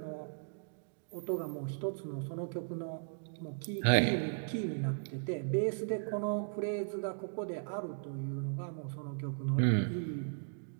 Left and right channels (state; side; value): silent; left; digital silence